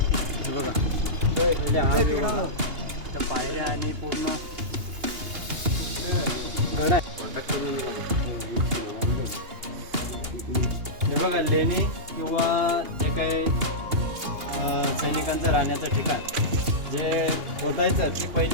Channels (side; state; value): left; late; 2.8 ms